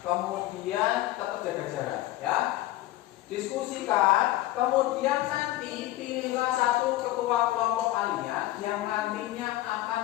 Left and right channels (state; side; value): quieter; right; 16.1 dB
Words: kemudian tetap jaga jarak, ya. Diskusikan, kemudian nanti pilihlah 1 ketua kelompok kalian yang nantinya akan